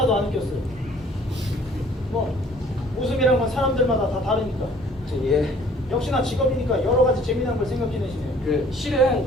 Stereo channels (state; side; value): normal; both; correlation 0.55